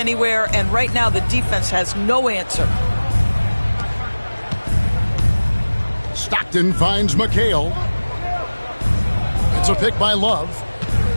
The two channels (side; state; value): both; inverted; correlation -1.00